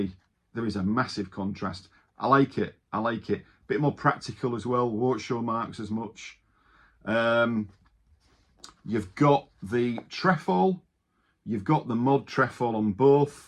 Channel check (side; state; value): both; identical; correlation 1.00